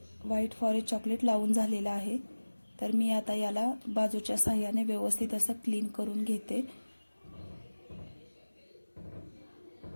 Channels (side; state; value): both; inverted; correlation -1.00